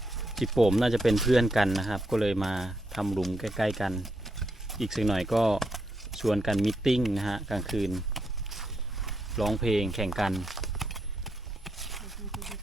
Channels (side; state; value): both; normal; correlation 0.80